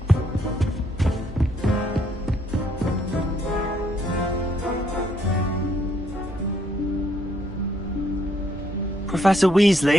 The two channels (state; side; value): normal; both; correlation 0.71